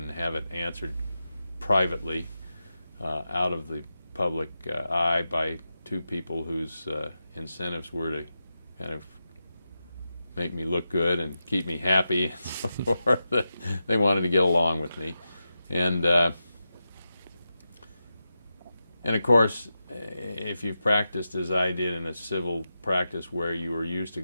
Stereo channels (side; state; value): both; inverted; correlation -0.90